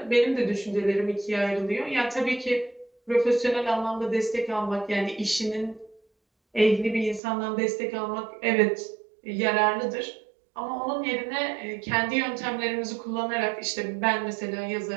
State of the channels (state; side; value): drops out; left; at 7.2 s